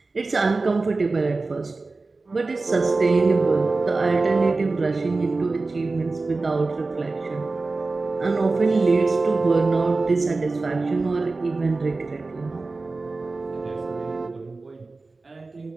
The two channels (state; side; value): quieter; left; 3.6 dB